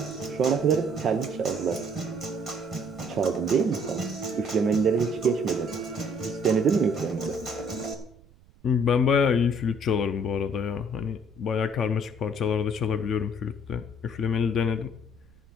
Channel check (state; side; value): noise; right; rumble, 27 dB below the sound